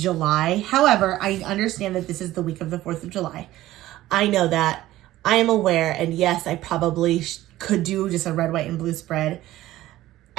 However, I understand that this is the week of the 4th of July. I know that. I am aware, and yes, I probably could do just a red, white, and blue spread.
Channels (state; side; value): quieter; left; 15.4 dB